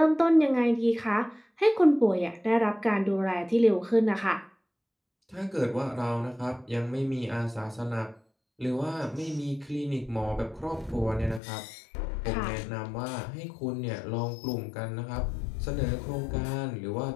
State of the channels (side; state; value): right; drops out; at 11.4 s